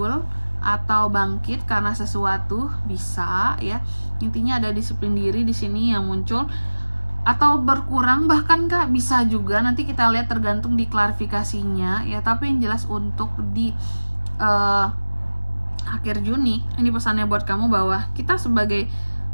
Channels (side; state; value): both; inverted; correlation -1.00